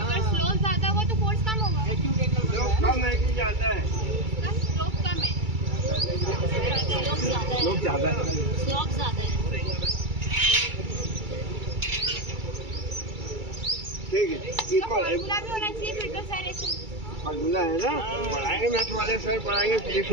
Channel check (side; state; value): left; late; 2.3 ms